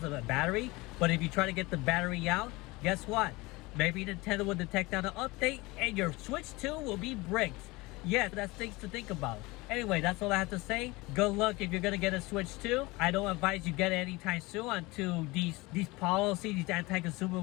a battery. But if you try to get the battery out, guess what? Maybe Nintendo will detect on an update, and your Switch 2 will be bricked. Yes, that's things to think about. Anyway, that's all I have to say. Good luck if you're gonna get a Switch 2. I don't advise you get it anytime soon until these policies, these anti-consumer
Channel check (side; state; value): right; quieter; 22.6 dB